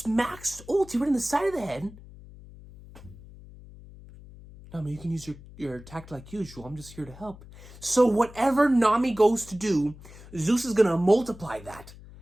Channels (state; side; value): noise; left; hum, 19 dB below the sound